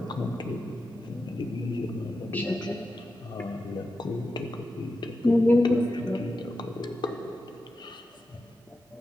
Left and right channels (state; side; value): normal; both; correlation 0.90